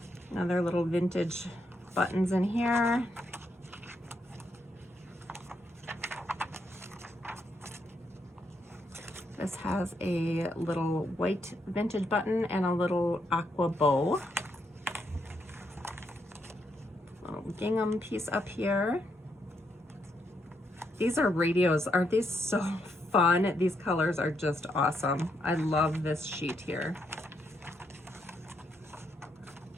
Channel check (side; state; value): both; normal; correlation 0.78